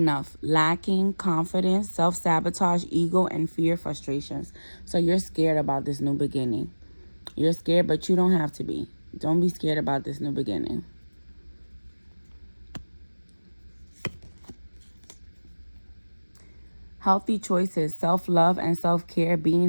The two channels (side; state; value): both; inverted; correlation -1.00